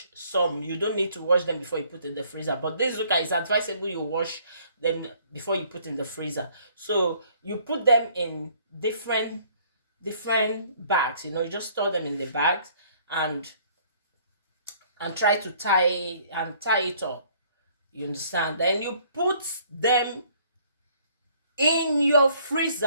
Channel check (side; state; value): both; inverted; correlation -0.60